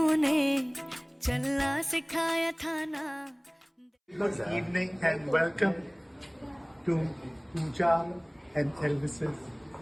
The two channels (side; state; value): both; identical; correlation 1.00